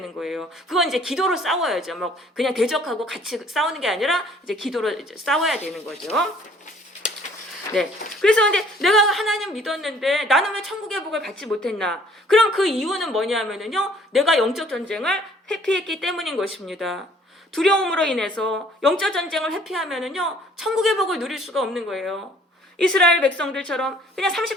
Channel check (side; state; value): both; normal; correlation 0.57